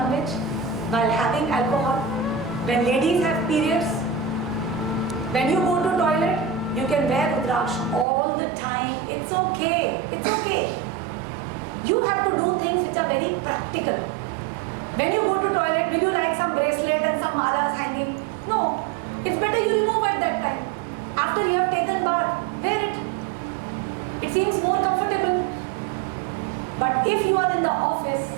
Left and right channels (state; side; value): drops out; left; at 8.1 s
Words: while having alcohol, when ladies have periods, when you go to toilet, you can wear Rudraksh all the time. It's okay. It's okay. You have to do things which are very practical. When you go to toilet, will you like some bracelet and some malas hanging? No. It's better you remove at that time. After you have taken bath, wear it. It seems more comfortable. But if you are in the office